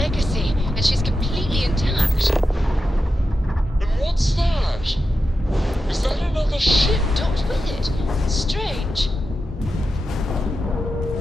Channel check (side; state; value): both; normal; correlation 0.90